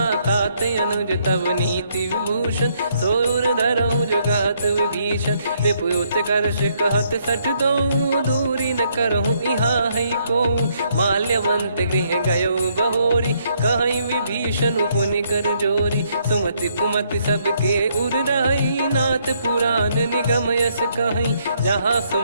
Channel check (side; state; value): both; inverted; correlation -0.71